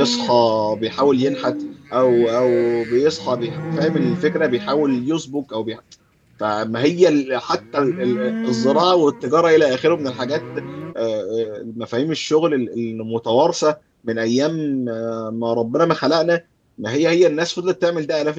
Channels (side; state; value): both; identical; correlation 1.00